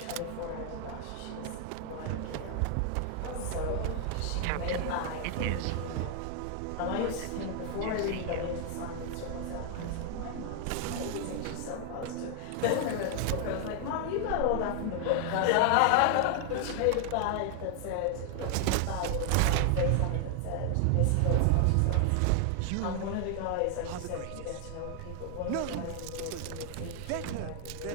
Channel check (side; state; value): both; different; correlation 0.00